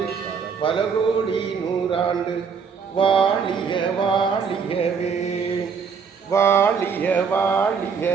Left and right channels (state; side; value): quieter; left; 6.1 dB